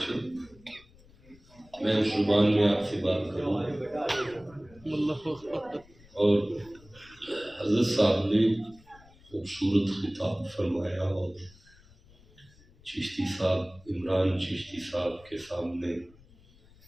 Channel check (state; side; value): noise; left; rumble, 26 dB below the sound